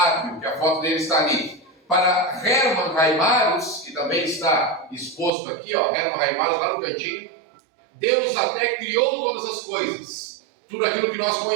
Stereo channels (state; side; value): drops out; left; at 5.3 s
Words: que a foto dele está ali. Para Hermann Heimarus, que também está exposto aqui, ó, Hermann Heimarus lá no cantinho, Deus até criou todas as coisas. Tudo aquilo que nós